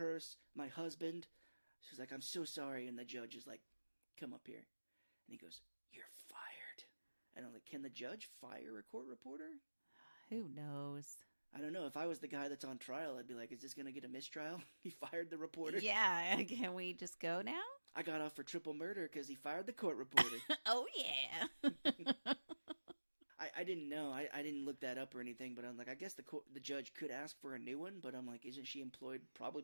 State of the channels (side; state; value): both; inverted; correlation -1.00